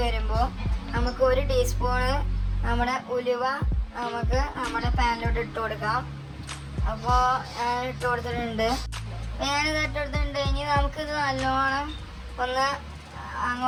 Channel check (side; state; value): both; identical; correlation 1.00